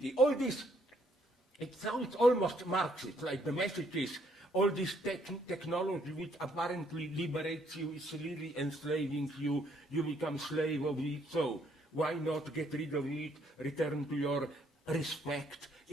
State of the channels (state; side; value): normal; both; correlation 0.68